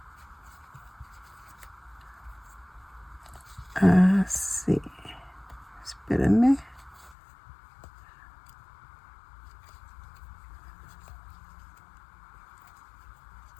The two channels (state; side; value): drops out; right; at 7.2 s